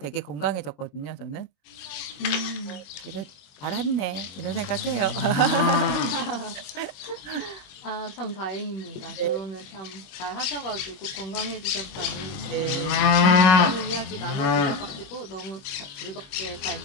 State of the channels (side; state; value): right; late; 21 ms